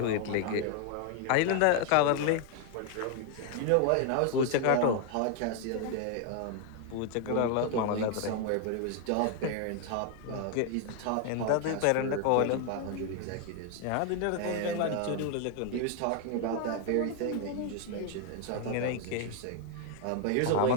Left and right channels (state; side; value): different; both; correlation 0.00